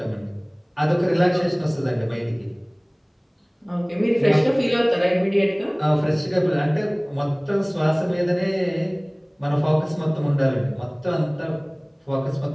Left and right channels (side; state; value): both; identical; correlation 1.00